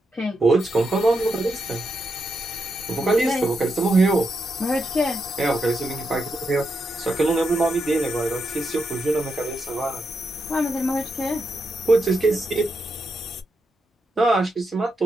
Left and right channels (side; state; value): both; normal; correlation 0.84